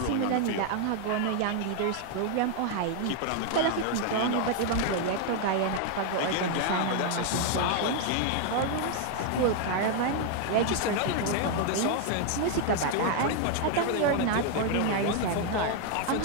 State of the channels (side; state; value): both; different; correlation 0.00